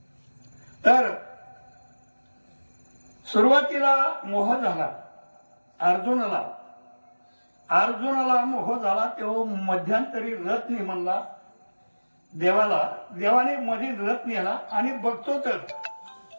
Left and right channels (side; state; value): both; inverted; correlation -1.00